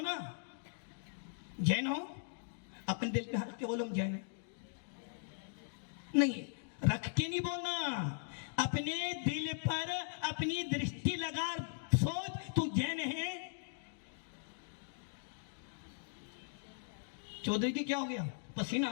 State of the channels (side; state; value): right; silent; digital silence